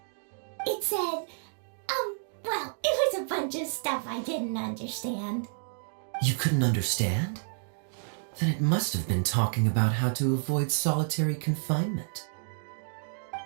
It said, well, it was a bunch of stuff I didn't understand. You couldn't understand? Then it must have been talking about how to avoid solitary confinement.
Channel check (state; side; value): silent; left; digital silence